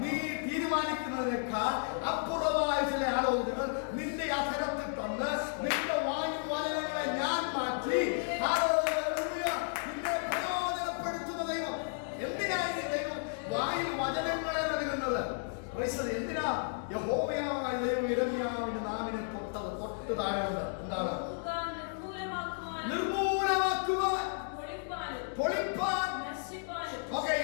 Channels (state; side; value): silent; right; digital silence